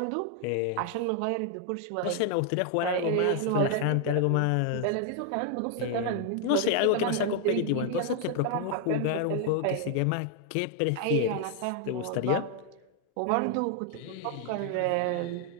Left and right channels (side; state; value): both; different; correlation 0.00